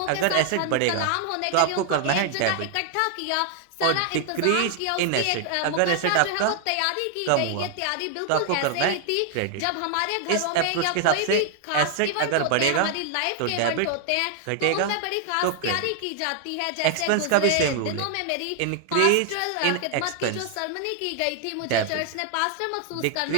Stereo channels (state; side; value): different; both; correlation 0.00